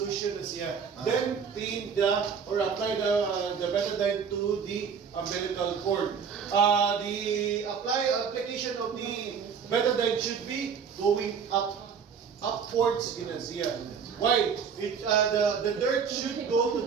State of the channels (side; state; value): left; quieter; 6.6 dB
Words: then clean or apply the betadine to the umbilical cord. The application of the betadine should be going upwards. Why? The dirt should go to